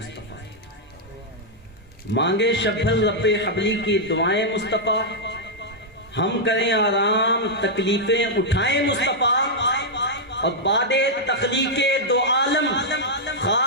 مانگے شب بھر رب حبلی کی دعائیں مصطفیٰ، ہم کریں آرام تکلیفیں اٹھائیں مصطفیٰ۔ اور بعد تخلیق دو عالم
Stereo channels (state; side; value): normal; both; correlation -0.05